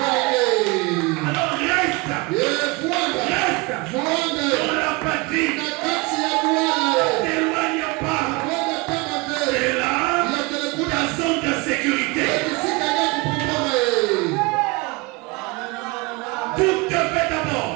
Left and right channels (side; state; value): left; quieter; 25.9 dB